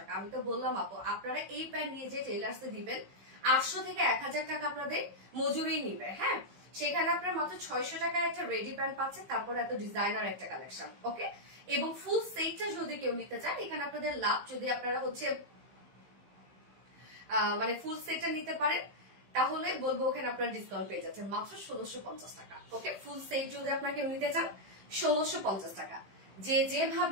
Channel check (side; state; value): left; late; 15 ms